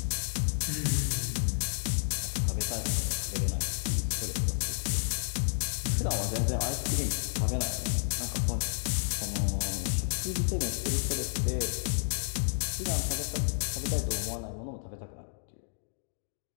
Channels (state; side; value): silent; right; digital silence